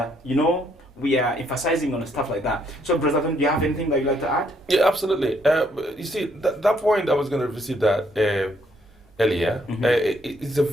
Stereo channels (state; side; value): normal; both; correlation 0.70